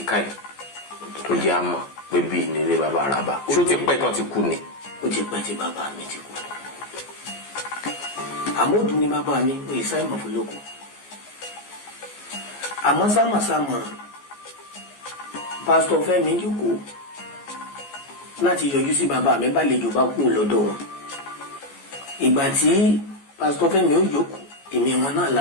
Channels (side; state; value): right; late; 14 ms